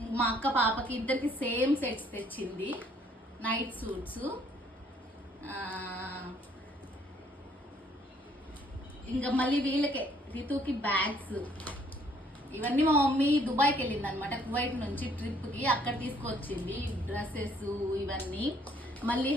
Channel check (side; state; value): both; normal; correlation 0.63